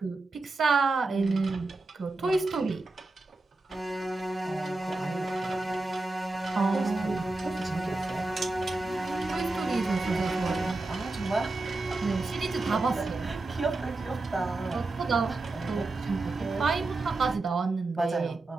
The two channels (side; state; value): left; quieter; 3.2 dB